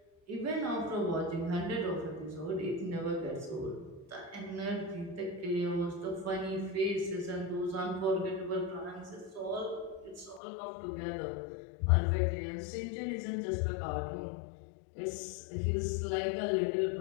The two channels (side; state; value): right; drops out; at 10.4 s